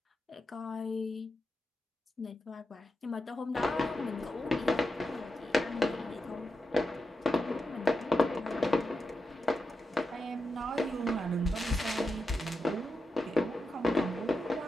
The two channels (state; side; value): normal; both; correlation 0.88